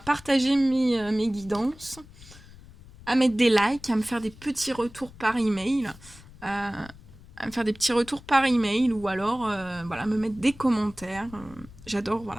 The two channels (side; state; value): left; noise; rumble, 20 dB below the sound